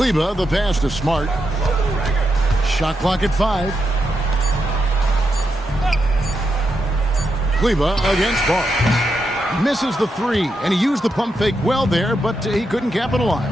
the pass to Smart. Shot clock at 5. Kleber against Barnes. Misses the 3, and he used the pump fake well there, but he couldn't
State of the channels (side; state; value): both; normal; correlation 0.84